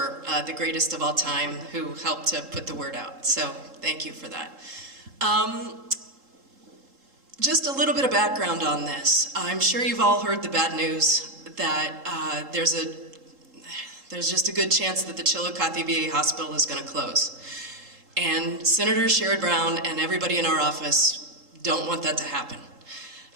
the greatest of all time, who helped to put the word out. So thank you for that. Just a little bit of background on this. I'm sure you've all heard the bad news that there's just a good chance that the Chillicothe VA hospital is going to close. And Senator Sherrod Brown and everybody in our office don't want that to happen.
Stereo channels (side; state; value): left; late; 3.8 ms